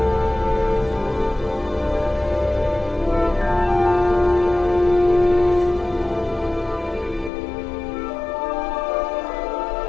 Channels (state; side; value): drops out; right; at 7.3 s